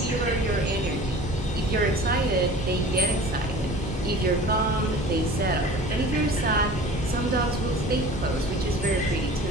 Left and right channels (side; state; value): both; normal; correlation 0.42